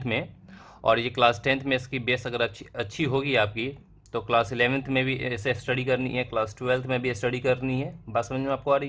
में। और ये क्लास 10th में इसकी बेस अगर अच्छी होगी आपकी, तो क्लास 11th में भी इसे स्टडी करनी है, क्लास 12th में भी स्टडी करनी है। बात समझ में आपको आ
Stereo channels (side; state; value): both; identical; correlation 1.00